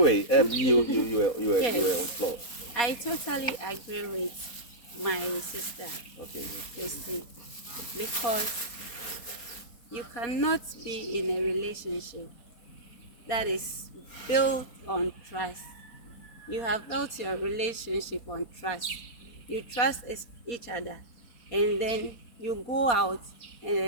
you were Yes, on floor. I totally agree with my sister, Okay. Christy, because you cannot be in a relationship that is built on trust. You have built your relationship on trust. You trust each other, and then you go out, and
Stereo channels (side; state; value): right; late; 4.2 ms